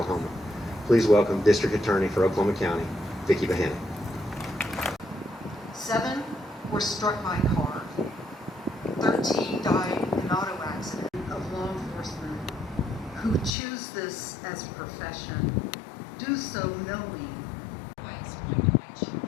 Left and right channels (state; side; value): drops out; right; at 13.6 s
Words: Please welcome District Attorney for Oklahoma County, Vicki Behenna. 7 were struck by a car. 13 died in an auto accident. Of law enforcement who choose this as a profession do so knowing.